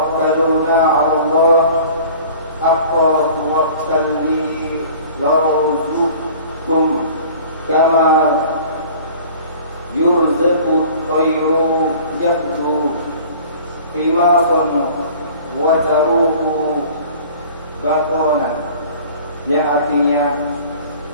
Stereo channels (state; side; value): inverted; both; correlation -0.46